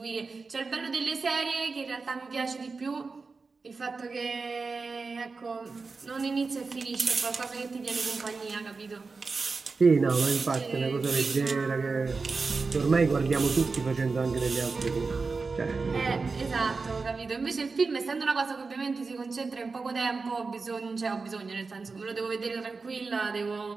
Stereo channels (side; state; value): left; quieter; 4.3 dB